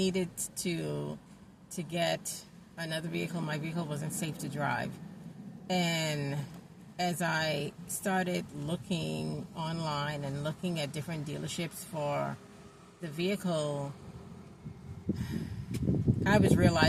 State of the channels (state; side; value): identical; both; correlation 1.00